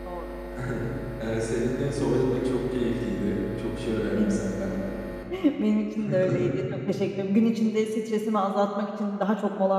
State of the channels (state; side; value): identical; both; correlation 1.00